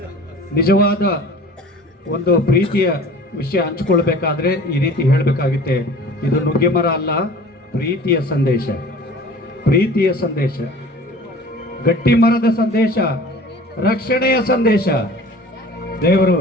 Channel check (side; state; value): both; normal; correlation 0.44